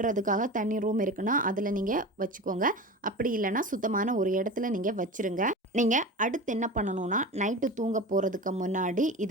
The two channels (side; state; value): both; normal; correlation 0.30